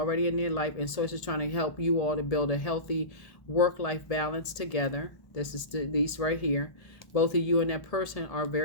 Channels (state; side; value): late; right; 1.7 ms